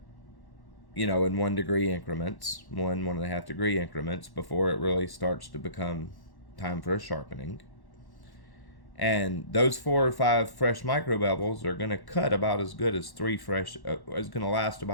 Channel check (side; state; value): right; late; 1.1 ms